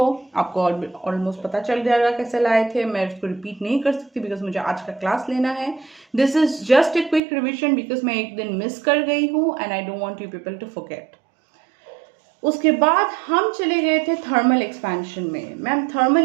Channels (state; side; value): drops out; left; at 7.2 s